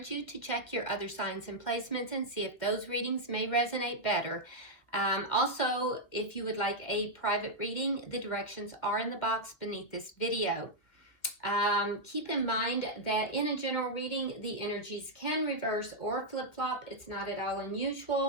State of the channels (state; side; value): late; right; 2.1 ms